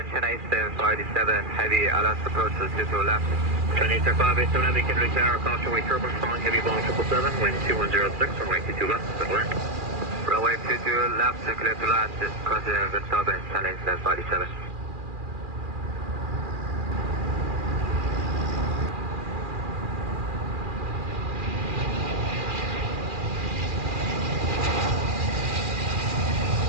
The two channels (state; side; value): late; left; 2.4 ms